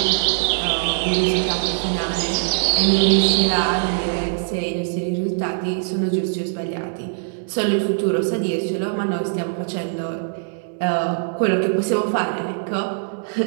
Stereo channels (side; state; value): left; silent; 65 dB below the other